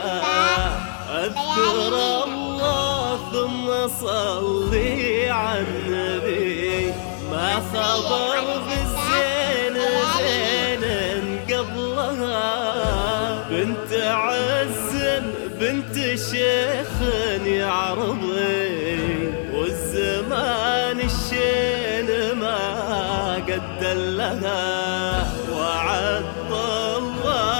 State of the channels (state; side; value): silent; right; digital silence